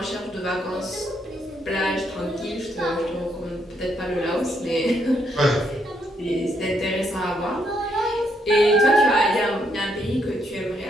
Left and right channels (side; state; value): both; normal; correlation 0.75